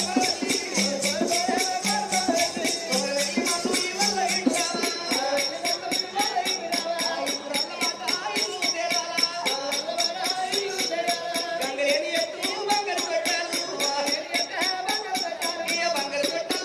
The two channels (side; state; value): both; identical; correlation 1.00